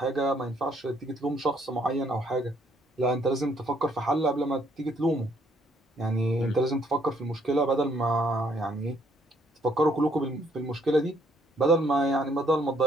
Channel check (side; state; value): both; normal; correlation 0.67